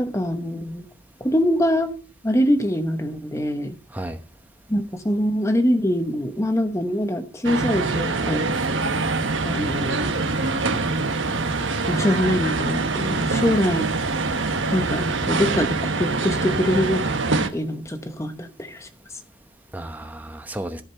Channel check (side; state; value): both; normal; correlation 0.61